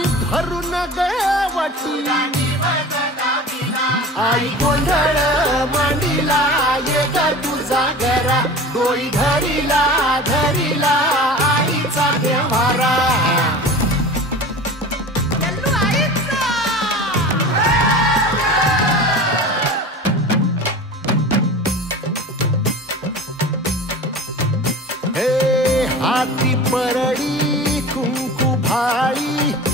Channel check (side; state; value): both; normal; correlation 0.36